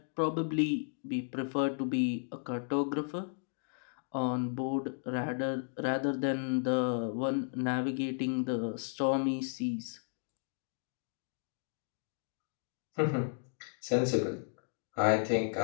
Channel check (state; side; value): silent; right; digital silence